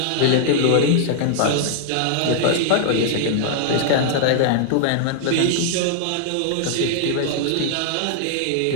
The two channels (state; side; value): different; both; correlation -0.01